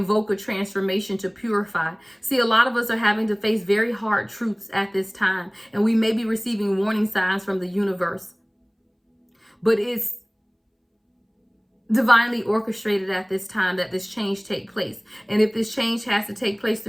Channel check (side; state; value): both; identical; correlation 1.00